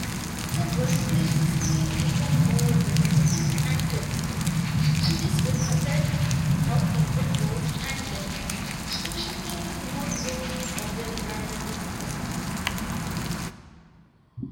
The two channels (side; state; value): both; identical; correlation 1.00